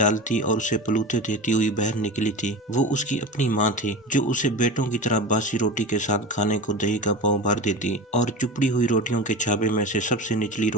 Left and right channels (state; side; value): normal; both; correlation 0.29